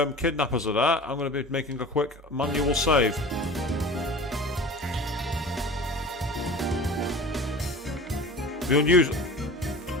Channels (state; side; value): normal; both; correlation 0.38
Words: kidnappers are there, I'm going to be making a quick manual save. The unusual...